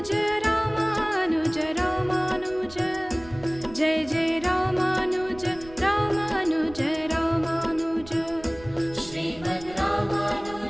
Ramanuj Ramanuj Jai Jai Ramanuj Ramanuj Ramanuj Shrimad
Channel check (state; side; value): noise; right; rumble, 19 dB below the sound